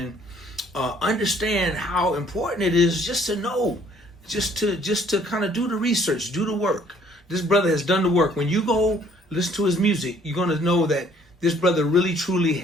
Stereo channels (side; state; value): both; normal; correlation 0.60